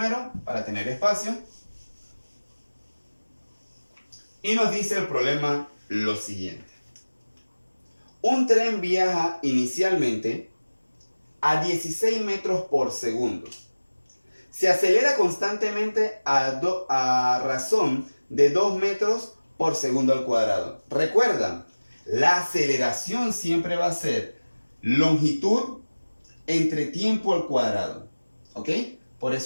para tener espacio. Y nos dice el problema lo siguiente. Un tren viaja inicialmente a 16 metros por segundo. Se acelera constantemente a razón de 2 metros por segundo al cuadrado. Recuerda, la aceleración siempre va a ser longitud entre tiempo al cuadrado. ¿Ok? Por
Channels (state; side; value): inverted; both; correlation -1.00